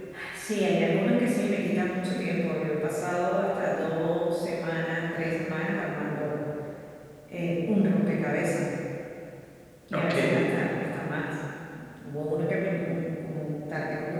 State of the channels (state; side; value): identical; both; correlation 1.00